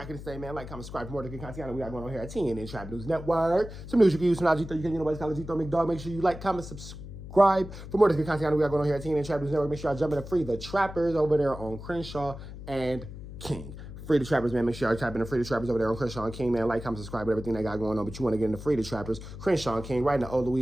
the same, man. Like, comment, subscribe for more good content. We got going on here at TNN Trap News Network. Some news you can use, some knowledge you can, nobody's calling G-Throw McDog. Make sure you like, comment, subscribe for more good content. We got going on here at TNN Trap News Network. Make sure y'all jump in to free the trappers over there on Crenshaw and King. Free the Trappers, man. Make sure y'all type in the Free the Trappers over there on Crenshaw and King, man. Like, comment, subscribe to everything they got going on. But you want to get into Free the Trappers, Crenshaw and King, right in the old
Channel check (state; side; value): noise; left; hum, 12 dB below the sound